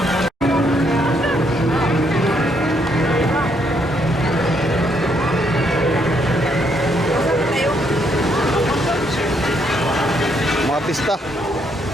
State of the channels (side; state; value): both; normal; correlation 0.73